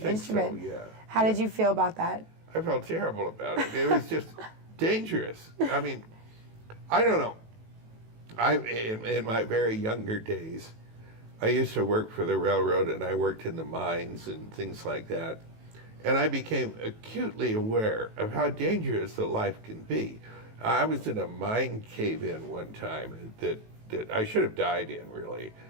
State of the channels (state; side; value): late; left; 18 ms